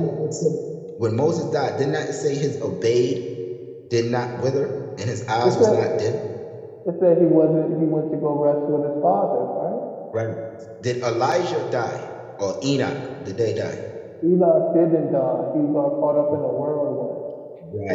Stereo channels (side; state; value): both; identical; correlation 1.00